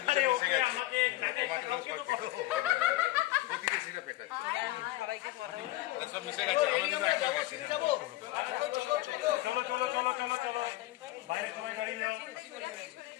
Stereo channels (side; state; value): right; quieter; 17.4 dB